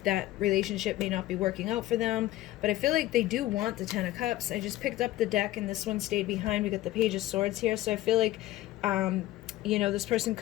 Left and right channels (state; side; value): quieter; right; 15.6 dB